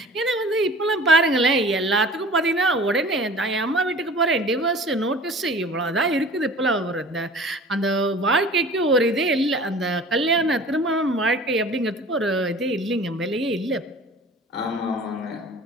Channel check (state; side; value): normal; both; correlation 0.44